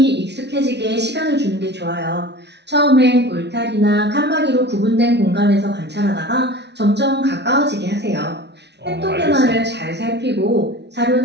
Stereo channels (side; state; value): left; late; 0.50 ms